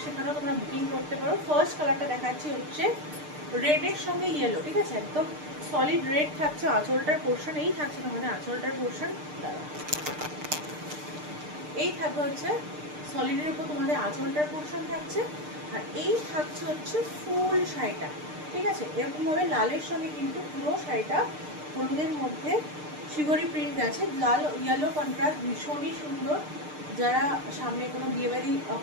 সেখানেও তোমরা বুকিং করতে পারো। ফার্স্ট কালারটা দেখাচ্ছি হচ্ছে রেডের সঙ্গে ইয়েলো। ঠিক আছে, একদম সলিড রেড থাকছে আঁচলটার পোর্শন। এই থাকছে তোমাদের আঁচলটার পোর্শন, এই থাকবে হচ্ছে সলিডের উপর তোমাদের আঁচলটার পোর্শন থাকছে। আর এই থাকছে হচ্ছে ফুল শাড়িটা। ঠিক আছে, এরকমভাবে লালের সঙ্গে কিন্তু পুরো শাড়িটা হলুদের মধ্যে শিবরি প্রিন্ট আছে। লাল ইয়েলো কন্ট্রাস্ট ভীষণই সুন্দর। যারা সামনে কোনো বিয়েবাড়ি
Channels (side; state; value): left; late; 6.6 ms